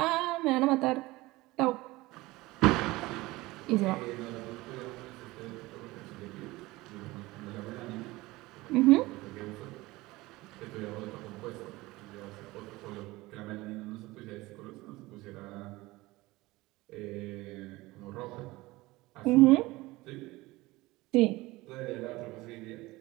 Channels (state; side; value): quieter; left; 20.2 dB